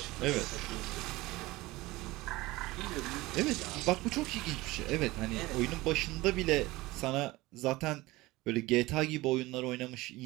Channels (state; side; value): quieter; left; 20.0 dB